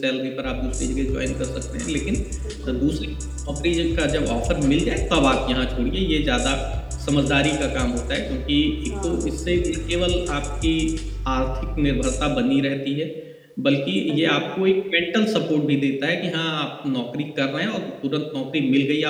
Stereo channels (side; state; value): both; identical; correlation 1.00